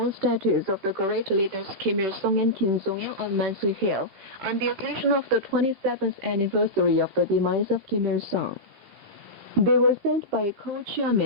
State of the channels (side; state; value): both; normal; correlation -0.13